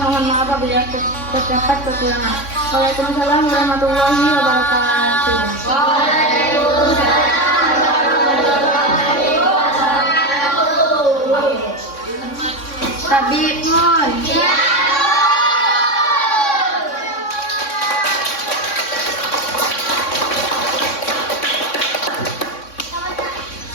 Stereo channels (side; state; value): right; late; 3.6 ms